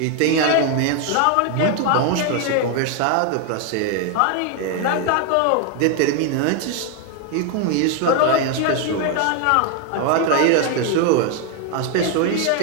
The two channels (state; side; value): different; both; correlation 0.01